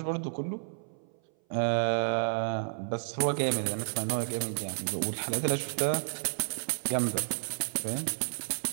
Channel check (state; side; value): silent; left; 57 dB below the other